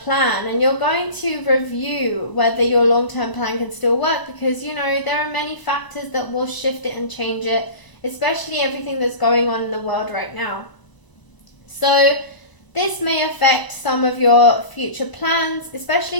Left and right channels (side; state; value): right; late; 1.0 ms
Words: and you're going to review whether your long-term plan can still work, because there are many factors that will shift it and change it, especially everything that's going on in the world right now. So this may affect some of your future plans, especially